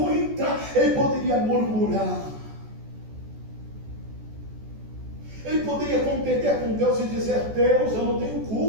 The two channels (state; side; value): late; left; 14 ms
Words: entrar. Ele poderia murmurar. Ele poderia contender com Deus e dizer: Deus, eu não tenho